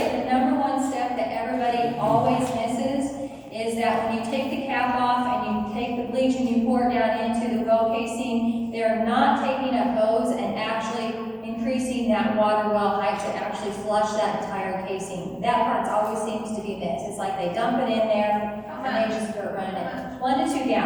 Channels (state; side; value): identical; both; correlation 1.00